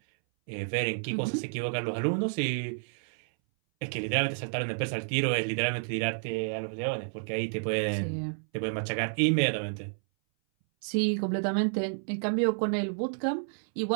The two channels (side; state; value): left; silent; 58 dB below the other